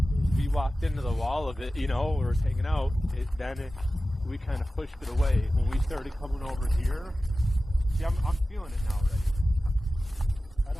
we walked into the wall of it, you know, we were hanging out. We kind of pushed it away. When we started coming over here, see, I'm feeling it now already. I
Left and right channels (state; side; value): normal; both; correlation 0.95